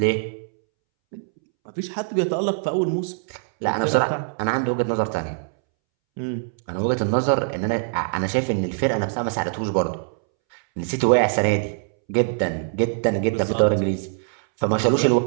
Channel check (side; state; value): left; silent; 64 dB below the other